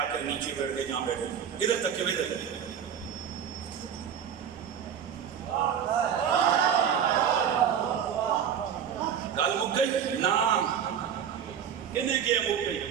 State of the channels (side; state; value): left; quieter; 8.4 dB